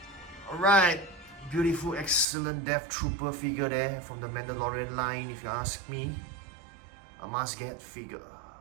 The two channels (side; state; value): left; drops out; at 2.2 s